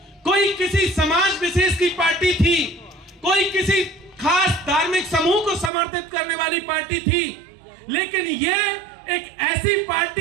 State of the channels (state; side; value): drops out; left; at 5.7 s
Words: कोई किसी समाज विशेष की पार्टी थी, कोई किसी खास धार्मिक समूह को समर्थित करने वाली पार्टी थी, लेकिन ये एक ऐसी